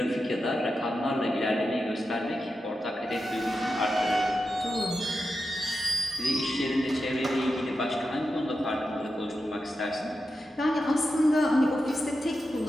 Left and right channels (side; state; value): both; normal; correlation 0.90